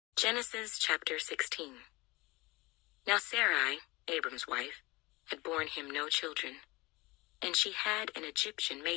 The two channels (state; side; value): quieter; right; 22.5 dB